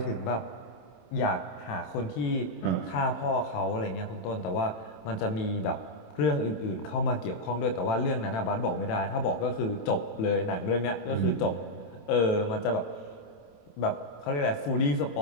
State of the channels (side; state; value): right; late; 27 ms